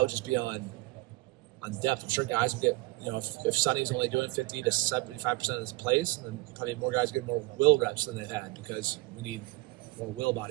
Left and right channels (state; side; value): quieter; left; 22.8 dB